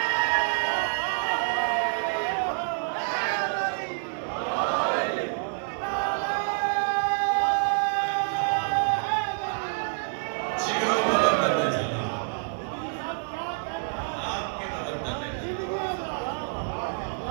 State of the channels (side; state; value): left; silent; digital silence